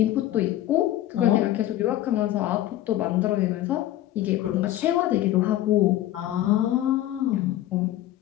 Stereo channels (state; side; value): quieter; right; 13.6 dB